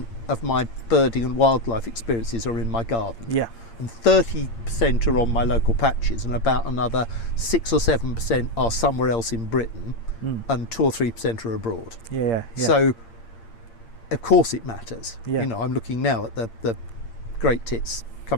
of my birding and wildlife experiences are in my garden. Yeah. And 30% are on my local patches, and about another 6 or 7% are somewhere else in Britain, and 2 or 3% are abroad. Yeah. So, of course it matters. Yeah. You know, I'm looking now at the great tits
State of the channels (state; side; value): late; right; 8.7 ms